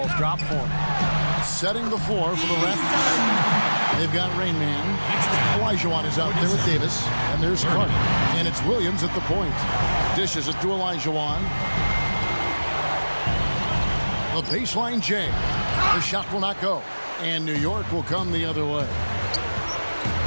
drop for him. Setting the floor for the Raptors. They've got Rain Man. Olajuwon is out there with Davis. And there's Carter. And it's Williams at the point. Dishes it to Olajuwon. The baseline J. The shot will not go. And New York will come the other way.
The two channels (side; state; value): both; inverted; correlation -1.00